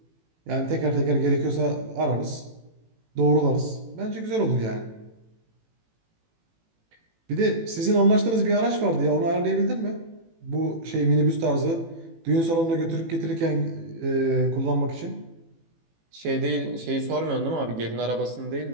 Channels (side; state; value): left; late; 18 ms